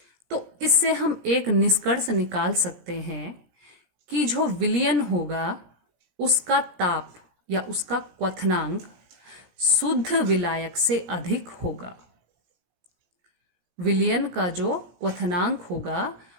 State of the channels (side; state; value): left; late; 17 ms